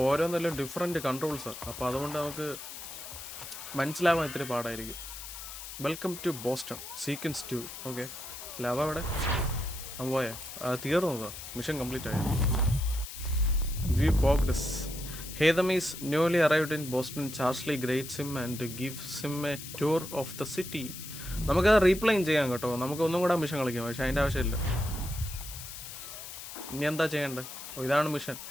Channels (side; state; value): left; noise; hiss, 11 dB below the sound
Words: ഓരോന്നെല്ലാം ഡിഫറെൻറ്റ് കൺട്രോൾസാണ്. അപ്പോൾ അതുകൊണ്ട് നമുക്ക് മനസ്സിലാവാൻ ഇത്തിരി പാടായിരിക്കും. Welcome to Boston sequence 2. Okay, ലവ അവിടെ പോയാ തീർന്നതാ, മിഷൻ കംപ്ലീറ്റ് ആയ. വി പോഗ്ഡസ്. Haytham is newly arrived in Boston. Charsley greets him and gives him a tour of the city. നമുക്കത് റീപ്ലൈൻ ചെയ്യാം കേട്ടോ, നമുക്ക് ഒന്നും കൂടെ മിഷൻ കളിക്കാം, പക്ഷെ അതിൻ്റെ ആവശ്യമില്ല. ഇനി എന്താ ചെയ്യേണ്ടത്? ഇതാണ് മിഷൻ,